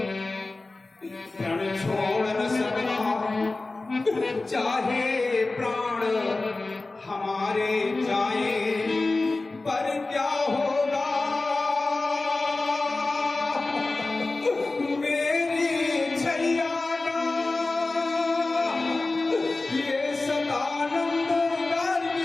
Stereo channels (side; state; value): right; quieter; 3.3 dB